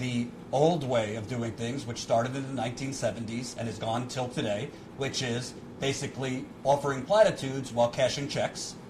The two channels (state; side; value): identical; both; correlation 1.00